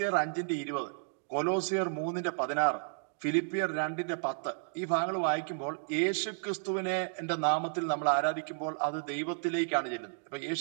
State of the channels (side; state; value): left; silent; digital silence